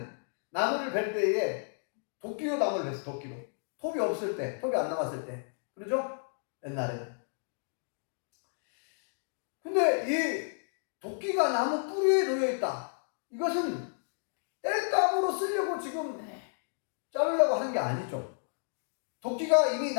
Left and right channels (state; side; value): silent; right; digital silence